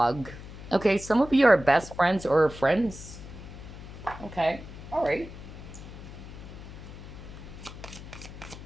Okay, some of you are best friends or friends. Okay, all right.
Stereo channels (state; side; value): noise; left; hum, 13 dB below the sound